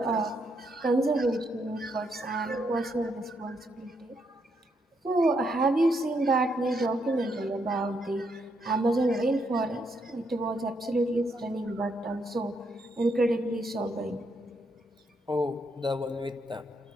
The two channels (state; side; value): normal; both; correlation 0.77